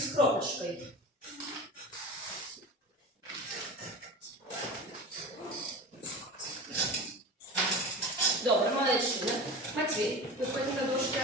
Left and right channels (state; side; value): normal; both; correlation 0.31